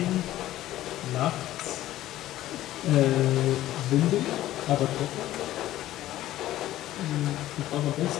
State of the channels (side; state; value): right; quieter; 14.4 dB